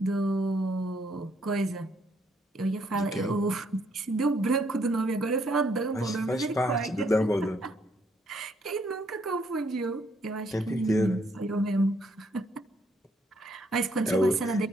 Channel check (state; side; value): normal; both; correlation 0.70